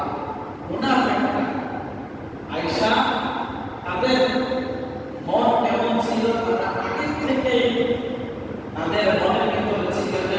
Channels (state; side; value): identical; both; correlation 1.00